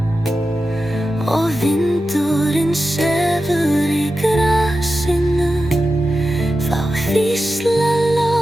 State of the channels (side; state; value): both; normal; correlation 0.92